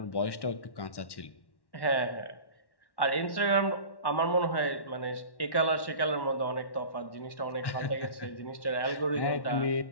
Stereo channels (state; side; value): late; right; 1.1 ms